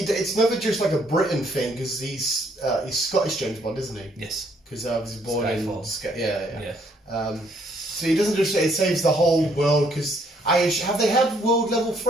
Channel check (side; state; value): both; normal; correlation 0.68